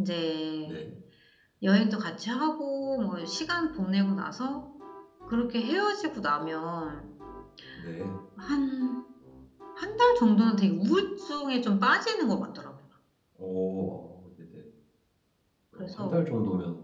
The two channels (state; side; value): identical; both; correlation 1.00